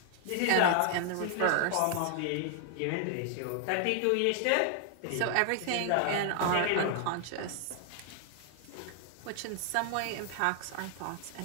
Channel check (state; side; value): different; both; correlation 0.00